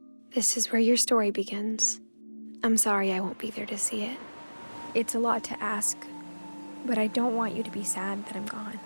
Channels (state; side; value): inverted; both; correlation -1.00